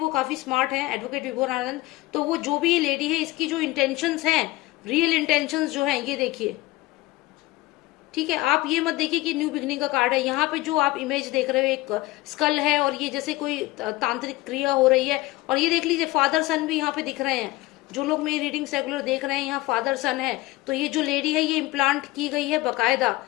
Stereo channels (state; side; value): quieter; right; 19.2 dB